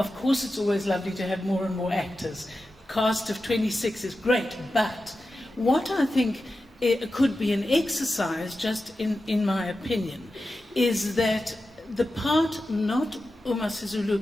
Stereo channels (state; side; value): normal; both; correlation 0.92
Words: course it's always lovely to have more and more actors. Cast of 26 is great, but what I think it could be an exercise, just in my opinion, is that the part, not Ooma